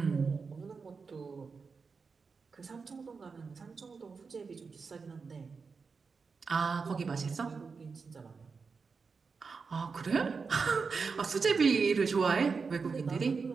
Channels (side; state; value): left; quieter; 5.0 dB